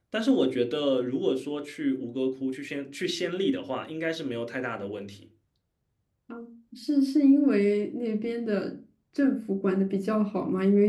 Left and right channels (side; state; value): both; identical; correlation 1.00